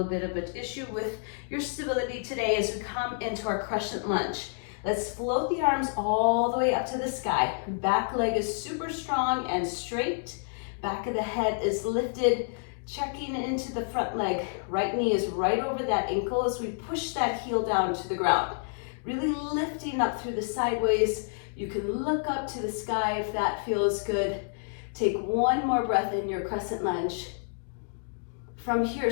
bit of an issue with your stability today as we come into our crescent lunge. Let's float the arms all the way up to the sky. Back leg is super strong and straight. Back of the head is lifted, checking into the front leg. Right knee is right over that ankle as we push that heel down to the ground. Really lifting up through the sideways. You can look up to the sky if that feels good. Take one more breath in your crescent lunge. From here,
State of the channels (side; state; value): right; silent; digital silence